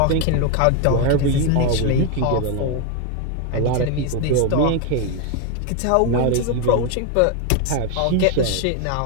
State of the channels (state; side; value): different; both; correlation 0.01